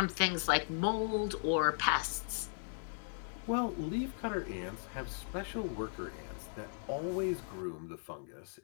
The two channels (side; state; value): right; silent; digital silence